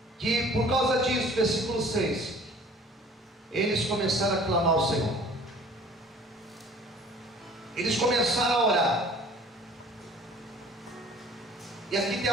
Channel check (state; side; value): normal; both; correlation 0.50